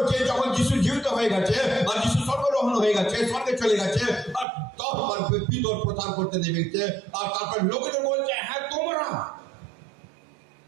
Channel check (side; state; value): left; drops out; at 4.5 s